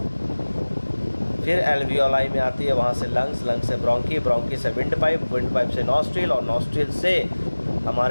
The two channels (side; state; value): both; inverted; correlation -1.00